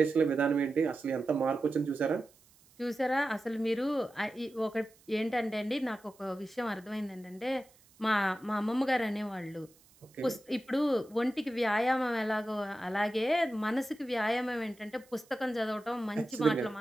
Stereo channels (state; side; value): noise; right; hiss, 29 dB below the sound